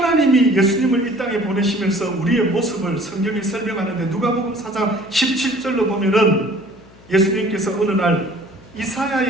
예수님을 이 땅에 보내시면서 우리의 모습을 성경이 설명하는데 누가복음 4장 17절로 보면은 예수님께서 어느 날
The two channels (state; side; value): noise; left; hum, 24 dB below the sound